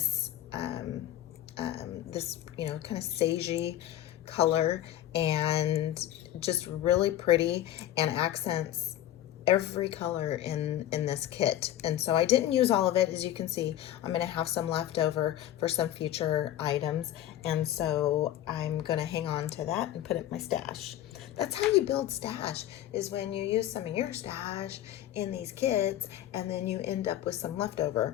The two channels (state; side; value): quieter; right; 12.5 dB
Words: this kind of sagey color, and just really pretty, and accents every color in this kit. And so I didn't use all of it. As you can see, I'm going to have some left over for some future items, and so I'm going to hang on to that and put it in my stash. That's how you build stash, is when you use some of your stash in these kits, and then you end up with some